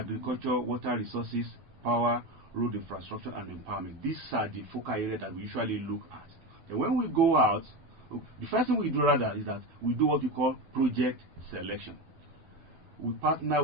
water resources, power, road infrastructure, and empowerment. These are the focal areas that we usually look at. And when we go out, the first thing we do rather is that we do what we call project selection. We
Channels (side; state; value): left; late; 12 ms